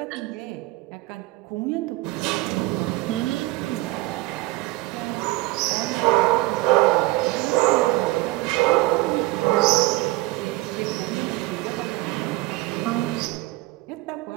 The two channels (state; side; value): quieter; left; 20.2 dB